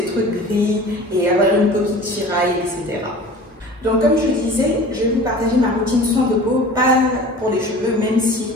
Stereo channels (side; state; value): both; normal; correlation 0.41